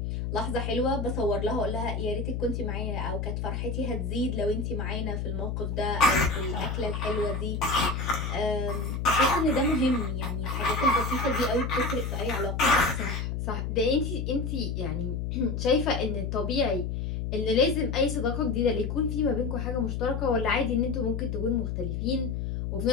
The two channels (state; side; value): noise; left; hum, 2 dB below the sound